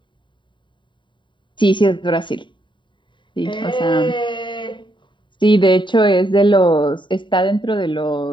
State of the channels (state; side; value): late; right; 0.23 ms